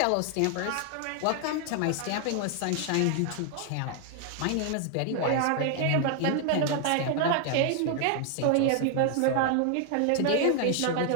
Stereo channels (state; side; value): different; both; correlation 0.00